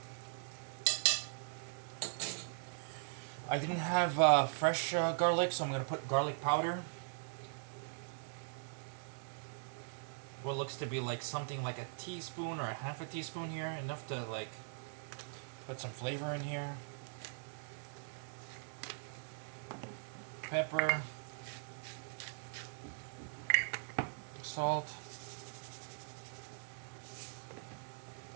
I didn't have fresh garlic, so I'm going to put garlic powder. What looks to be like something like a teaspoon or a half a teaspoon here. Enough to like put some flavor in here. Pepper, salt,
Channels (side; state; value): left; silent; digital silence